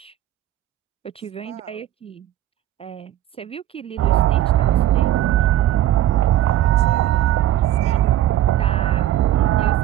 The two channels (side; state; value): left; quieter; 12.9 dB